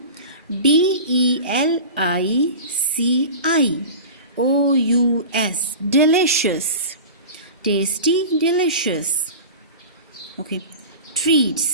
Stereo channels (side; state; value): both; inverted; correlation -0.33